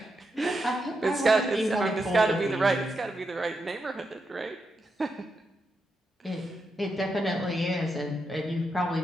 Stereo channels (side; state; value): both; normal; correlation 0.84